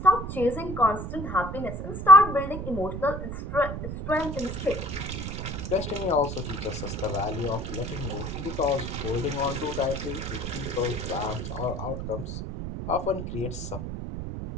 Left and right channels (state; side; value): noise; right; rumble, 6 dB below the sound